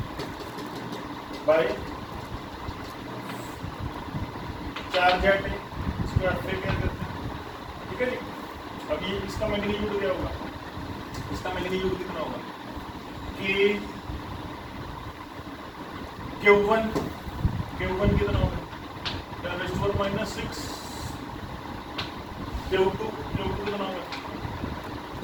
by charge at A. इसको आप क्या करते हैं? ठीक है जी। अब ये इसका मैग्नीट्यूड क्या होगा? इसका मैग्नीट्यूड कितना होगा? कि Q1 कितना होगा? 10⁻⁻6 Q2 कितना होगा?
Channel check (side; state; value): both; identical; correlation 1.00